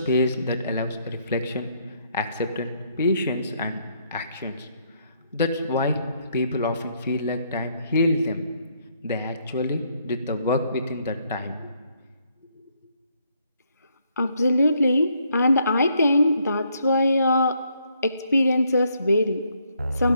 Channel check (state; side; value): inverted; both; correlation -0.72